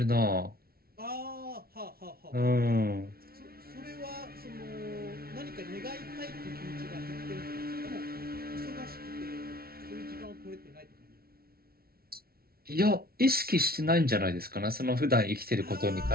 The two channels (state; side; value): late; left; 0.44 ms